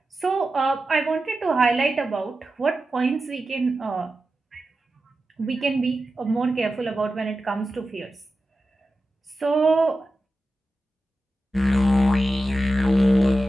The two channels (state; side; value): normal; both; correlation 0.92